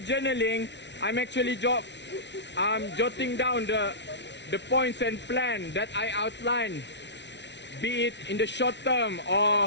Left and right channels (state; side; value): late; right; 0.51 ms